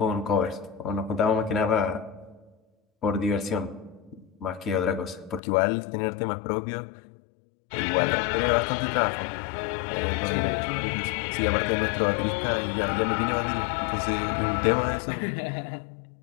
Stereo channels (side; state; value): right; drops out; at 5.4 s